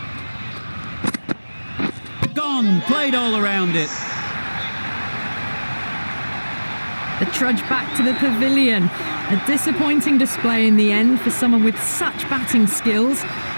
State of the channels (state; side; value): inverted; both; correlation -1.00